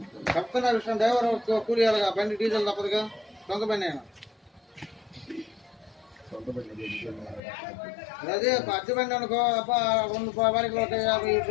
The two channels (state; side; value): drops out; right; at 7.4 s